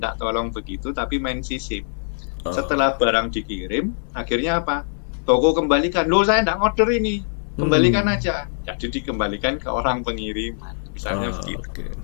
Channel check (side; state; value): right; silent; 59 dB below the other